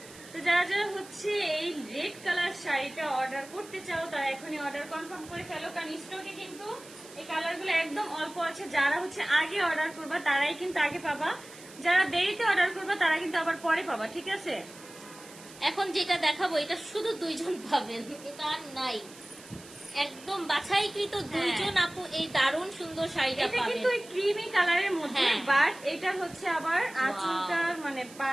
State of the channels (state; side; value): noise; right; hiss, 19 dB below the sound